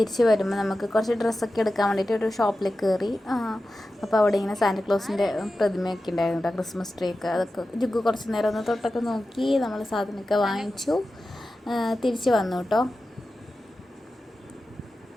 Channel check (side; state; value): both; normal; correlation 0.93